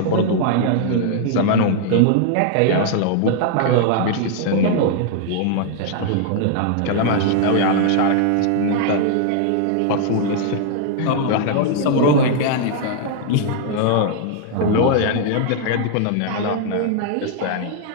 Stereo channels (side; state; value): both; different; correlation 0.00